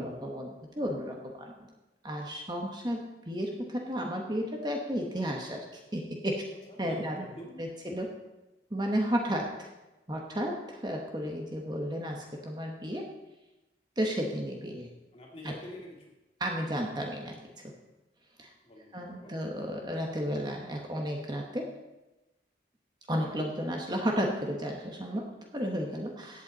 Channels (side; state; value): both; normal; correlation 0.69